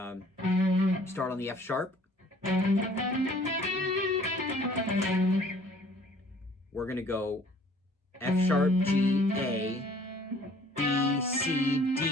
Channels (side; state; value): both; normal; correlation 0.56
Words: on the F sharp. We're going to go F sharp, G, A, B, C,